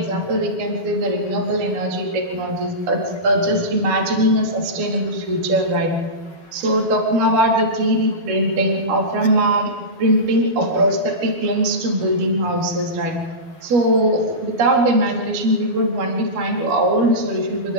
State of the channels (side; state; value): left; late; 12 ms